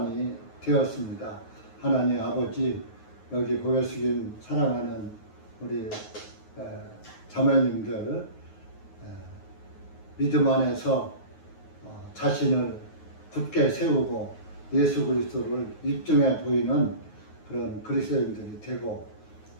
되었습니다. 하나님 아버지, 여기 고개 숙인 사랑하는 우리 자매님들 믿음 안에서 자신을 굳게 세우고 예수 그리스도를 입증해 보이는 그런 그리스도인들이 되고,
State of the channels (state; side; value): late; right; 9.4 ms